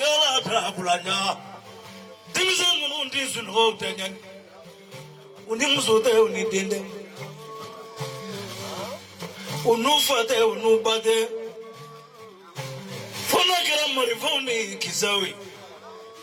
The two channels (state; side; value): identical; both; correlation 1.00